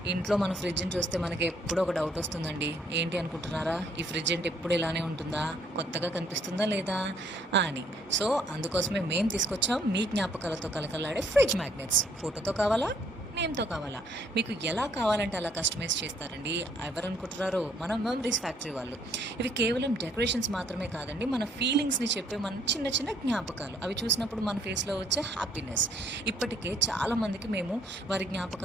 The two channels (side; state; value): both; normal; correlation 0.65